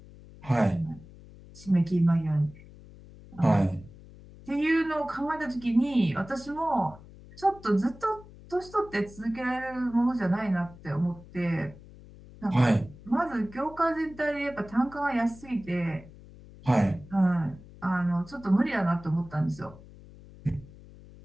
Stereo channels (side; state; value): left; noise; hum, 20 dB below the sound